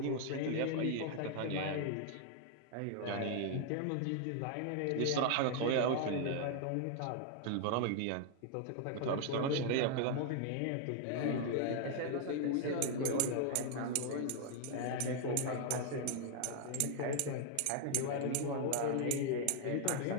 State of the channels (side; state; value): both; different; correlation 0.00